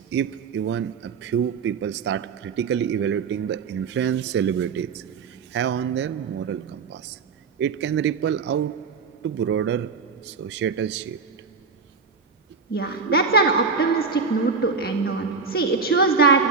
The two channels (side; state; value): left; quieter; 5.1 dB